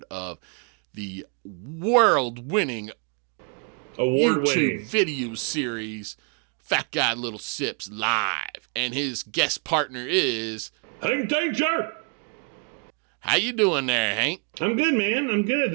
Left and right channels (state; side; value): quieter; left; 39.7 dB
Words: of the world-winning YouTube Award-winning. video series Fat Guy Little Sips Live. And his guest partner is... Hank Danger! How you doing there, Hank? I'm good, man. I'm good.